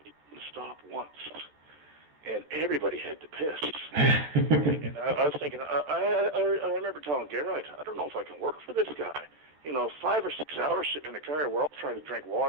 he didn't stop once. And everybody had to piss. And I was thinking, I remember telling Geraint, I don't know if I can work for this guy. 5 or 6 hours sitting in the car, we're all trying to drink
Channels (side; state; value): left; late; 14 ms